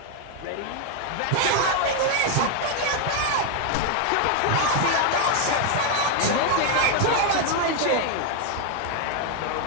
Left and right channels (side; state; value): both; different; correlation 0.00